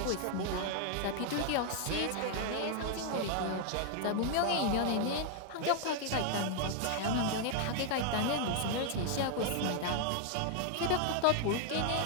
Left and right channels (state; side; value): different; both; correlation 0.00